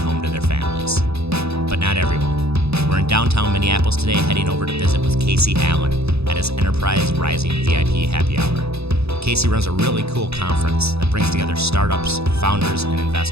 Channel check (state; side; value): late; left; 0.79 ms